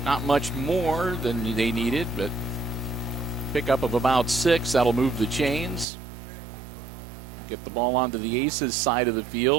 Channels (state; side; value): drops out; left; at 5.9 s